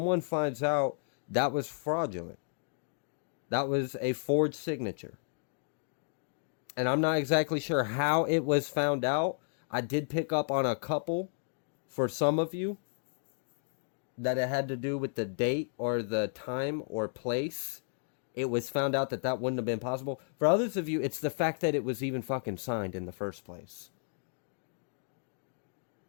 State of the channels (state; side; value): silent; right; digital silence